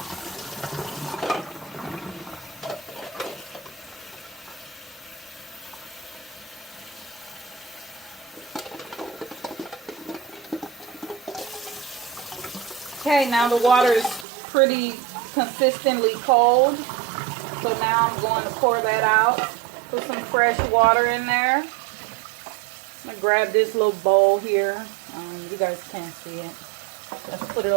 Okay, now the water is pretty consistently cold. So now I'm going to pour that out. Put some fresh water in there. I'm going to grab this little bowl here. You guys can't see it. Let's put it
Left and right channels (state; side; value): drops out; left; at 14.2 s